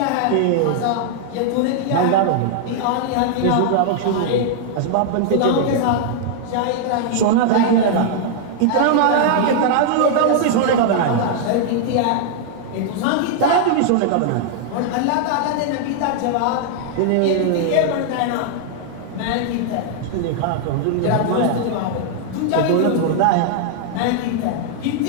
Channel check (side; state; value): both; different; correlation -0.01